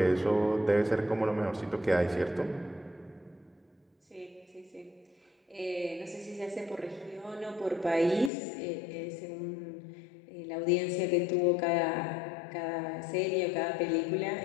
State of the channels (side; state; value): right; drops out; at 8.3 s